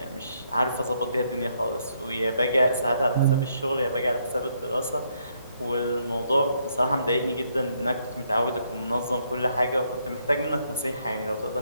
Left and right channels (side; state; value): both; inverted; correlation -0.73